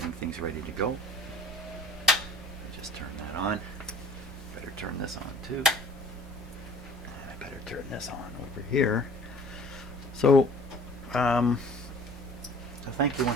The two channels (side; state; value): both; normal; correlation 0.48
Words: things ready to go. Just turn that on. Better turn this on too. And I better turn this on over here. So thank you